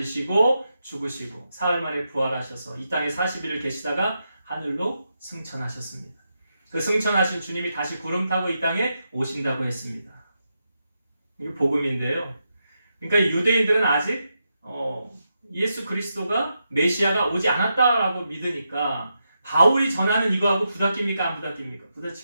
죽으시고 사흘 만에 부활하셔서 이 땅에 40일을 계시다가 하늘로 승천하셨습니다. 그 승천하신 주님이 다시 구름 타고 이 땅에 오신다고 했습니다. 이게 복음인데요. 그러니까 유대인들은 아직 예수 그리스도가 메시아가 오지 않았다라고 믿으니까 바울이 전하는 이거하고 부닥깁니까? 안 부닥깁니까?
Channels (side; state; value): both; inverted; correlation -0.85